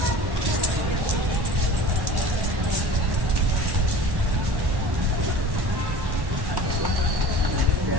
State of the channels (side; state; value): left; late; 1.1 ms